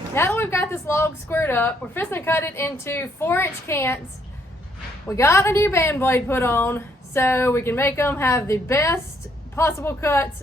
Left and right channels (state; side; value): normal; both; correlation 0.70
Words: Now that we've got this log squared up, we're fixing to cut it into 4-inch cants. We got a new band blade put on so we can make them have the best possible cuts